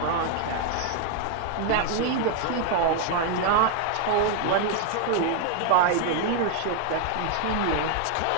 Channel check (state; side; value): different; both; correlation 0.00